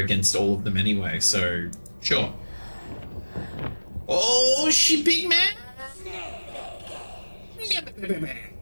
all of them anyway, so sure. Oh, she big man!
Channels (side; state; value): both; inverted; correlation -1.00